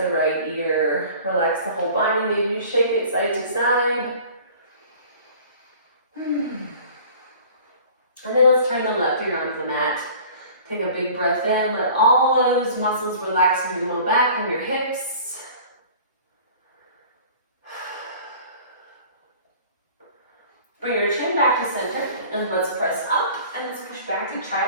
right ear. Relax the whole body. Maybe you shake it side to side. And then let's turn the left ear onto the mat. Take a big breath in. Let all those muscles relax in your low back and your hips. Bring your chin back to center and let's press up and let's push back to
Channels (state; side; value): inverted; both; correlation -0.46